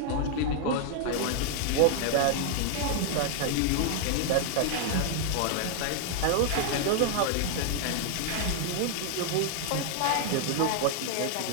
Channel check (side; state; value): both; different; correlation 0.00